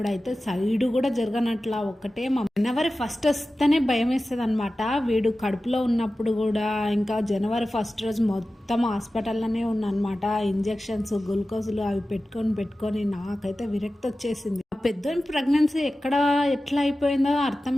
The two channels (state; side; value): normal; both; correlation 0.95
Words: సైడ్ కూడా జరగనట్లా ఒక్కటే జనవరి 1 వస్తేనే భయం వేస్తుంది అనమాట. వీడు కడుపులో ఉన్నప్పుడు కూడా ఇంకా జనవరి 1 రోజు మొత్తం హాస్పిటల్లోనే ఉన్నమాట. ఇంజెక్షన్స్ గ్లూకోజులు అవి పెట్టుకొని నాకైతే విరక్తి వచ్చేసింది. పెద్దోని ప్రెగ్నెన్సీ ఎట్లా అయిపోయిందో